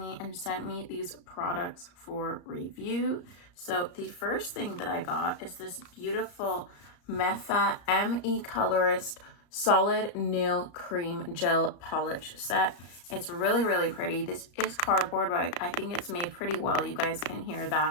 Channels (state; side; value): late; right; 34 ms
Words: and sent me these products for review. So the first thing that I got is this beautiful Mefa ME Colorist Solid Nail Cream Gel Polish set. It's really pretty. This is cardboard, but I think it's made pretty well. You guys can hear